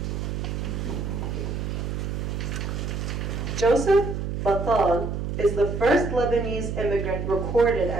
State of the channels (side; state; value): right; noise; hum, 3 dB below the sound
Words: Joseph Batal is the first Lebanese immigrant recorded